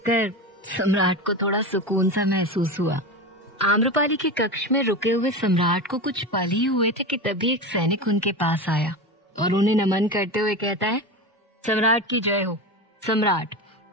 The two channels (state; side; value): normal; both; correlation 0.23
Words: सम्राट को थोड़ा सुकून सा महसूस हुआ। आम्रपाली के कक्ष में रुके हुए सम्राट को कुछ पल ही हुए थे कि तभी एक सैनिक उनके पास आया और उन्हें नमन करते हुए कहता है, सम्राट की जय हो। सम्राट,